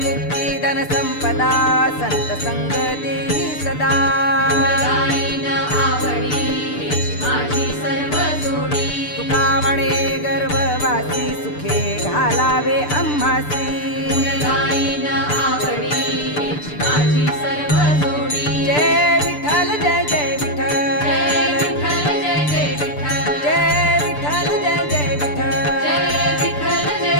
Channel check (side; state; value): right; late; 6.8 ms